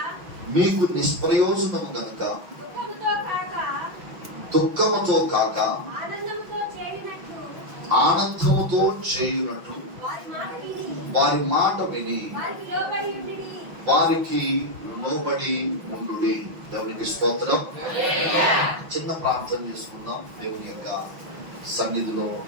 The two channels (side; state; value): left; late; 5.9 ms